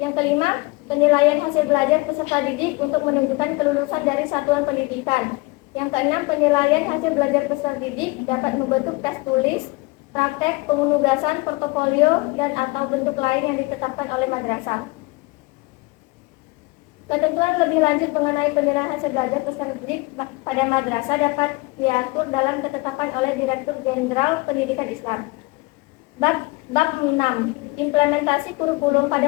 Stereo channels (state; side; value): quieter; right; 24.3 dB